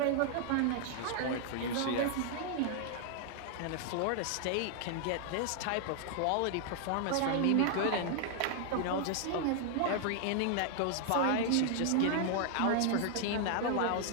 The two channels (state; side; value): different; both; correlation 0.00